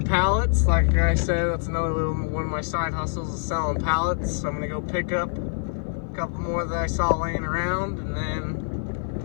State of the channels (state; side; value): silent; right; 56 dB below the other